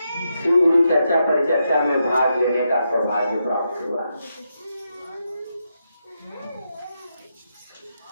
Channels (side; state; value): both; inverted; correlation -0.84